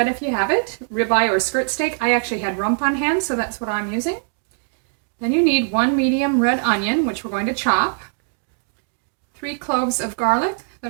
if you have it, ribeye or skirt steak. I actually had rump on hand, so that's what I'm using. Then you need 1 medium red onion, which we're going to chop, 3 cloves of garlic that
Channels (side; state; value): left; silent; digital silence